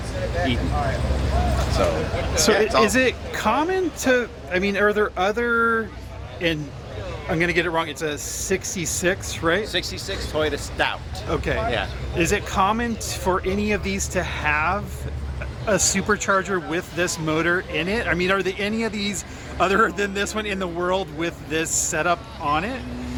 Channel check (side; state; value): both; identical; correlation 1.00